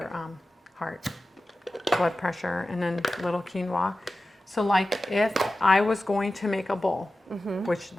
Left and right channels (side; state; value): both; normal; correlation 0.94